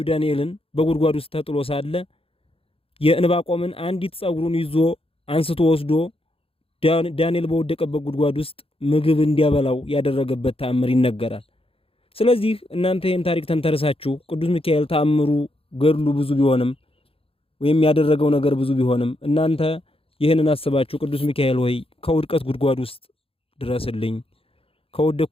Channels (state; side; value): late; right; 0.27 ms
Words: ዳንኤልን በጉድጓድ ውስጥ ተጥሎ ሳለ የዕንባቆምን አንዲት ጸጉሩን ይዞ አንስቶ ወስዶ ዳንኤል በወደቀበት ጉድጓድ ውስጥ ምግብ እንዲያበላው ያደረገበት ተአምር ይነገራል። ስለዚህ እናንተ ይህን ታሪክ ተንተርሳችሁ ቅዱስ ሚካኤል ተአምሩ ገድሉ ብዙ ቢሆንም ወይም ያደረገው ነገር ብዙ ቢሆንም እናንተ ይህንን አስባችሁ ቅዱስ ሚካኤል ሆይ ከውድቀት ጉድጓድ ውስጥ ድረስልኝ፣